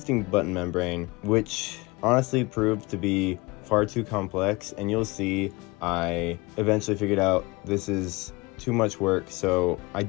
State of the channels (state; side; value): quieter; right; 24.3 dB